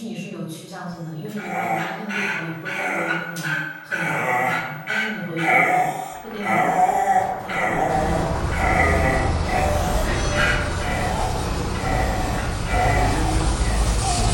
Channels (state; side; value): identical; both; correlation 1.00